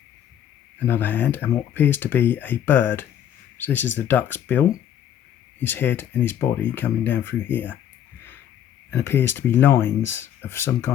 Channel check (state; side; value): quieter; right; 10.1 dB